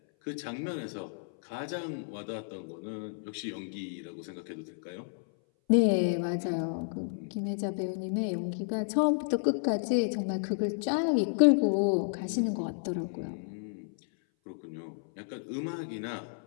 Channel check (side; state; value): right; silent; 57 dB below the other